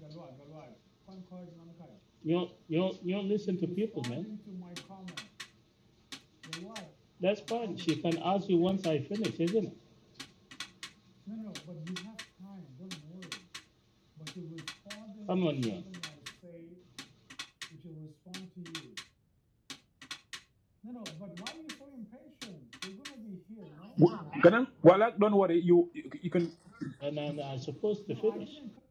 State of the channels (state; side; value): identical; both; correlation 1.00